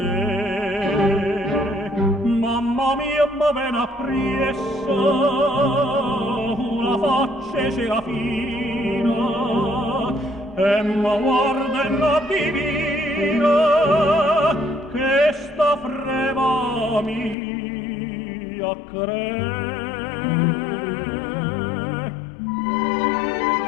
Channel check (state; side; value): drops out; right; at 17.4 s